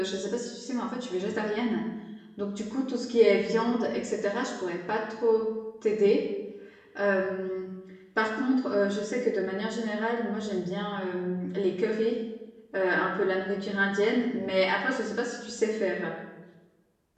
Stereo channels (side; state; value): both; identical; correlation 1.00